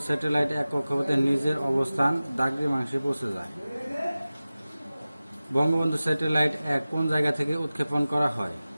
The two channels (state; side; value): inverted; both; correlation -0.97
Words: স্যাটেলাইট 1 কক্ষপথে নিজের অবস্থান দ্রাঘিমাংশে পৌঁছে যায়। বঙ্গবন্ধু স্যাটেলাইট 1 কোন জায়গা থেকে উৎক্ষেপণ করা হয়?